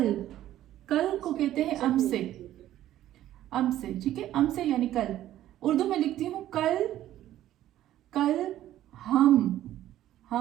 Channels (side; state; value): left; quieter; 13.1 dB